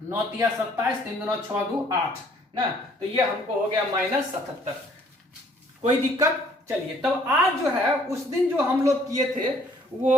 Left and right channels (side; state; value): both; normal; correlation 0.61